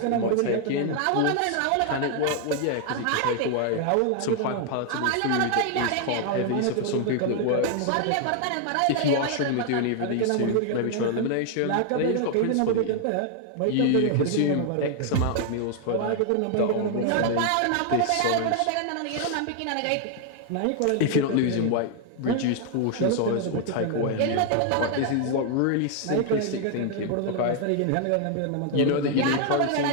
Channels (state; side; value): different; both; correlation 0.00